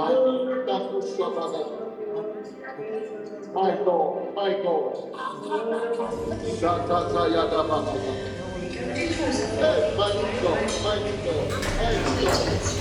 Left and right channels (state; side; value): identical; both; correlation 1.00